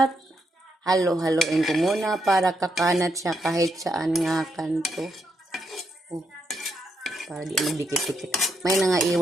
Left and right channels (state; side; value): normal; both; correlation 0.80